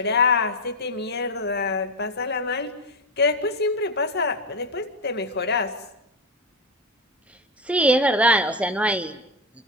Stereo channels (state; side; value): normal; both; correlation 0.12